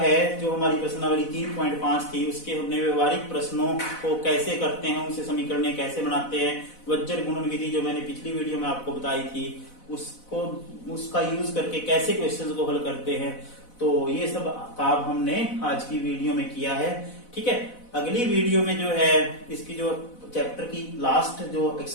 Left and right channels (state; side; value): late; right; 4.0 ms